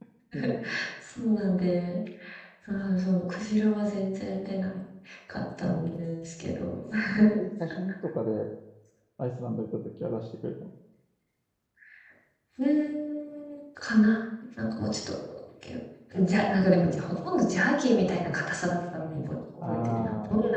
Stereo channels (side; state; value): both; identical; correlation 1.00